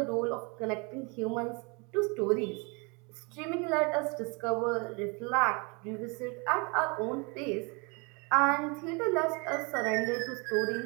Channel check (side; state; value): left; quieter; 31.1 dB